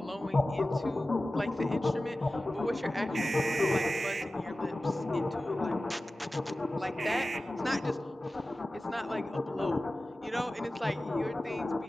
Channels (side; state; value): both; normal; correlation 0.95